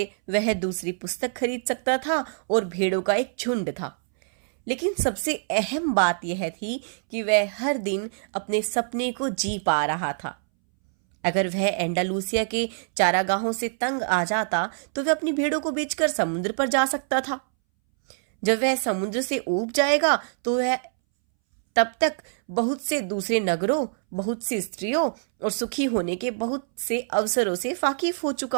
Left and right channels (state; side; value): silent; left; 62 dB below the other